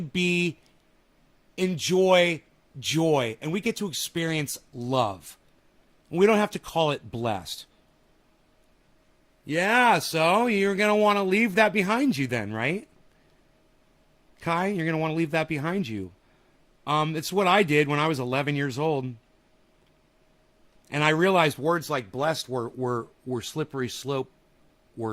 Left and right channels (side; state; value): both; identical; correlation 1.00